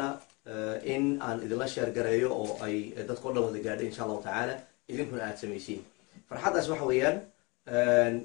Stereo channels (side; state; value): right; quieter; 27.7 dB